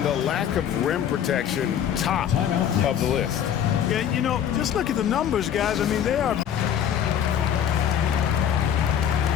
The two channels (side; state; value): right; quieter; 9.3 dB